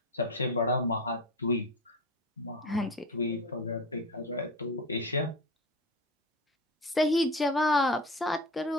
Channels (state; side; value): normal; both; correlation 0.27